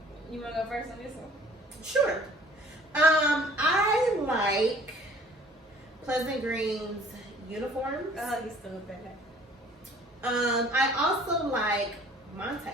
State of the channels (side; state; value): both; normal; correlation 0.53